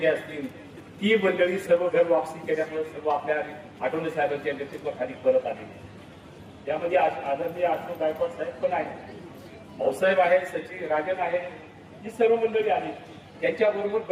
असतील, ती मंडळी सर्व घर वापसी केल्यामुळे सर्व आपल्या आठवले साहेबांच्या नेतृत्वाखाली परत आले. यामध्ये आदरणीय आठवले गायकवाड साहेब पण आहेत, भाऊसाहेब आहेत, सचिन राजन आहे, ही सर्व मंडळी आली. त्यांच्याबरोबर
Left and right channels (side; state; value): both; identical; correlation 1.00